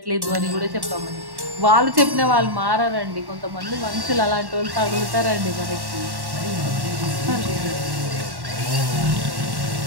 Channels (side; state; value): left; late; 1.1 ms